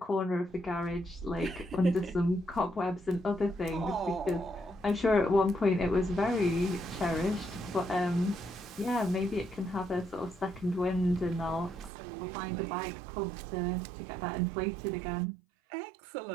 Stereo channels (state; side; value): drops out; left; at 11.9 s